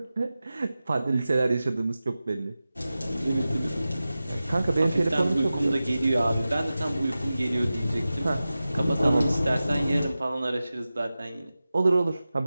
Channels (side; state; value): both; inverted; correlation -0.95